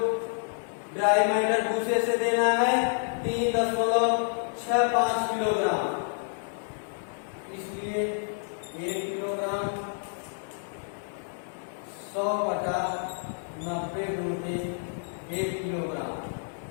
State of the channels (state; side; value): silent; right; 59 dB below the other